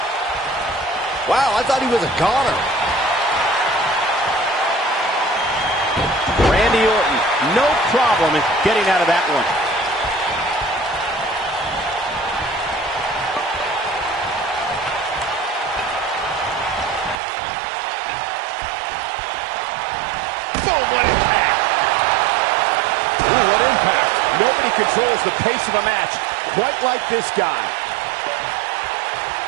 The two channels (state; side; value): drops out; left; at 17.2 s